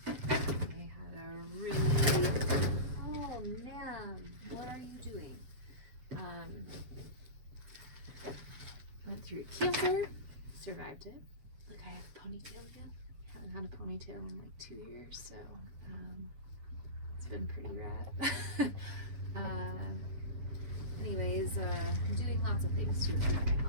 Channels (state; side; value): late; left; 7.9 ms